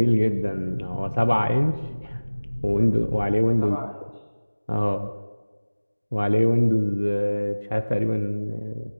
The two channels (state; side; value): inverted; both; correlation -1.00